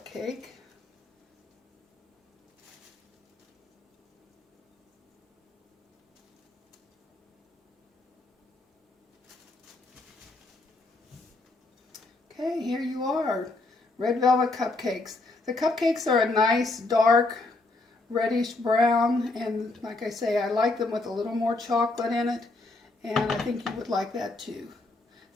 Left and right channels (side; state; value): right; quieter; 3.2 dB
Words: Okay, here you are, red velvet cupcakes. The cupcakes are a nice dark reddish brown, and like I say, I like them with a little more chocolate in it, and I think you would like that too.